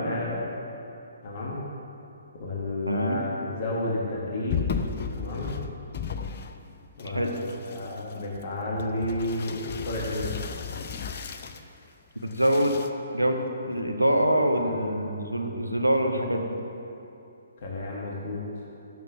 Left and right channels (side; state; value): both; inverted; correlation -0.69